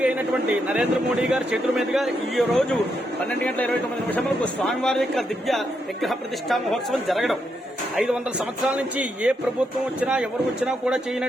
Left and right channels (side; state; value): both; normal; correlation 0.80